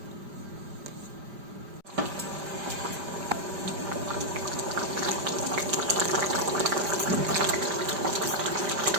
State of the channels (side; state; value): left; late; 5.0 ms